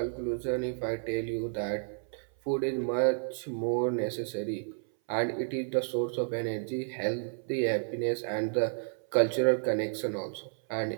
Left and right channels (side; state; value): left; silent; 57 dB below the other